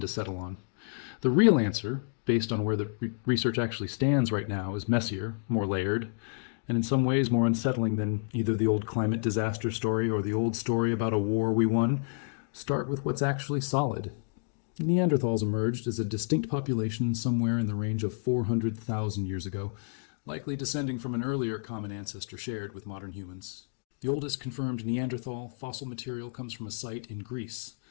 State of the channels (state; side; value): silent; right; digital silence